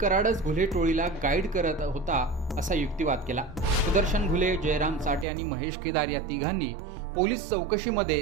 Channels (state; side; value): drops out; left; at 5.2 s